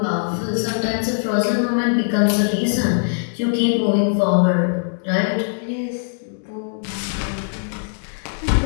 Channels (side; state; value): right; silent; digital silence